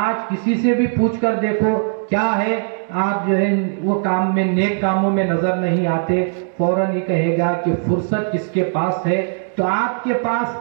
کسی سے بھی پوچھ کر دیکھو کیا ہے، آپ جو ہے وہ کام میں، نیک کاموں میں نظر نہیں آتے، فوراً ہی کہے گا کہ فرصت کس کے پاس ہے۔ تو آپ کے پاس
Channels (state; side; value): silent; left; digital silence